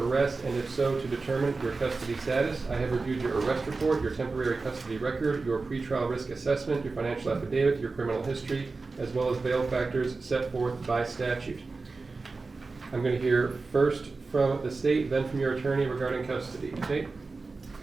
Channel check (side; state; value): left; quieter; 3.9 dB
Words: arrest, and if so, to determine your custody status. I have reviewed your arrest report, your temporary custody record, your pretrial risk assessment, your financial affidavit, your criminal history, as well as bail factors set forth by statute. I'm going to hear first from the state, then from your attorney regarding custody. State?